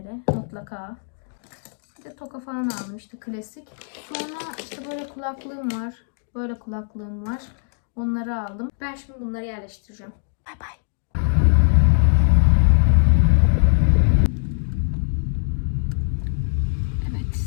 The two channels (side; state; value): right; silent; digital silence